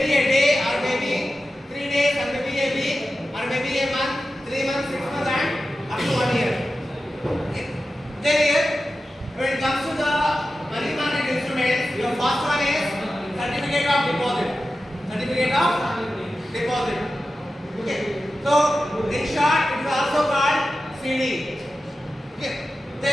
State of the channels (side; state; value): both; normal; correlation 0.93